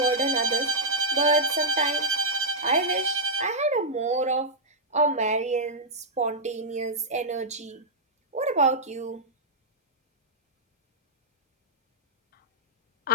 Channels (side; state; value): both; normal; correlation -0.08